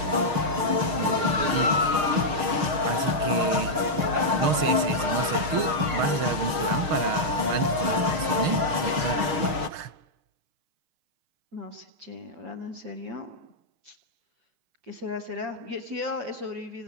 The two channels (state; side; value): late; left; 6.4 ms